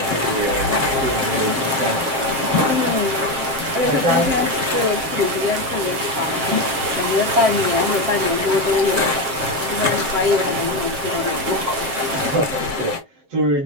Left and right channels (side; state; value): left; late; 7.5 ms